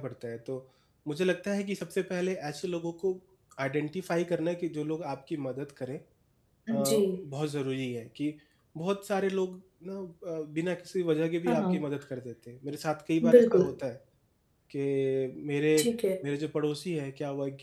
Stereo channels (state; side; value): identical; both; correlation 1.00